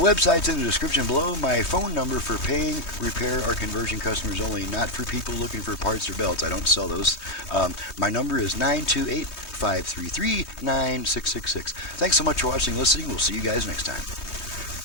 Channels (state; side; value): late; right; 3.2 ms